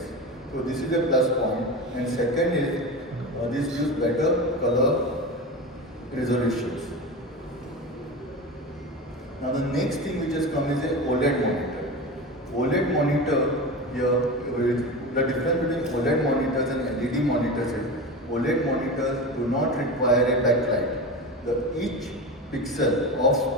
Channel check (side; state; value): both; normal; correlation 0.26